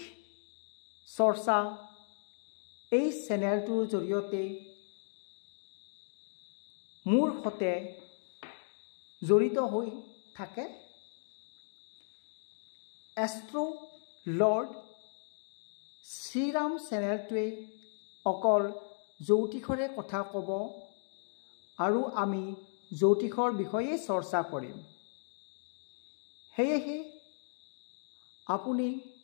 চৰ্চা এই চেনেলটোৰ জৰিয়তে মোৰ সৈতে জড়িত হৈ থাকে এষ্ট্ৰো লৰ্ড শ্ৰীৰাম চেনেলটোৱে অকল জ্যোতিষৰে কথা ক'ব আৰু আমি জ্যোতিষৰ বিষয়ে চৰ্চা কৰিম সেয়েহে আপুনি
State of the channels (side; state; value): right; silent; digital silence